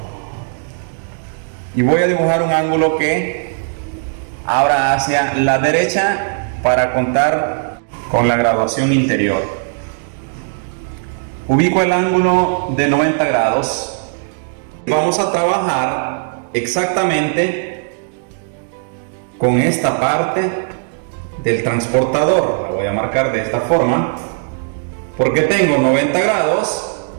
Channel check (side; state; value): left; silent; digital silence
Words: y voy a dibujar un ángulo que abra hacia la derecha para contar con la graduación interior. Ubico el ángulo de 90 grados. Vamos a trabajar exactamente con esta parte del transportador. La voy a marcar de esta forma porque tengo 90 grados